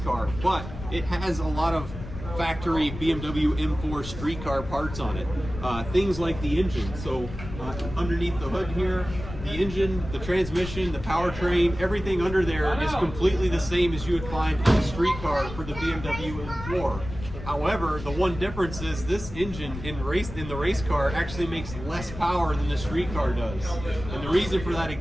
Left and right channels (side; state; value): left; noise; rumble, 10 dB below the sound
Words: car, but it has a lot of factory BMW M4 street car parts on it. Things like the engine. So underneath the hood here, the engine, the transmission, the powertrain, everything under there is completely the same as you would find in a street car for the BMW M4. However, the one difference is this engine in the race car actually makes less power than the street car does. And the reason for that,